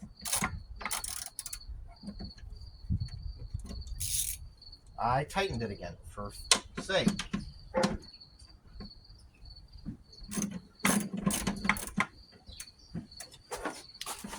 I tightened it again for sake.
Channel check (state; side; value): identical; both; correlation 1.00